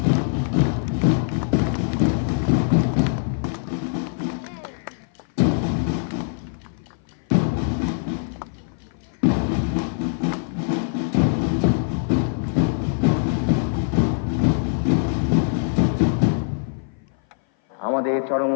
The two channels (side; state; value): right; silent; 57 dB below the other